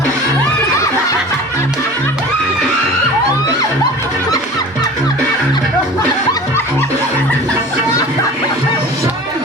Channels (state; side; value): normal; both; correlation 0.40